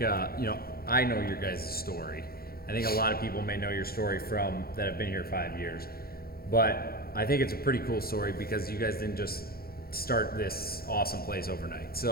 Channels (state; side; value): late; right; 0.44 ms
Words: I know your guys' story. I think a lot of people may know your story from that have been here 5 years, but I think it's a pretty cool story because you guys didn't just start this awesome place overnight.